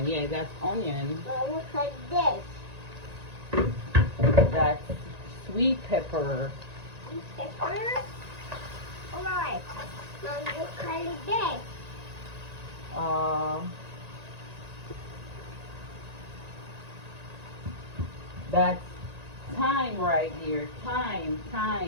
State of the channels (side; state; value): left; late; 1.9 ms